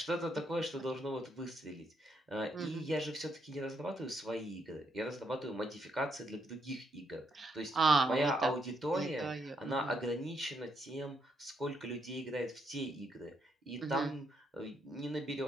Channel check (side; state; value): both; normal; correlation 0.76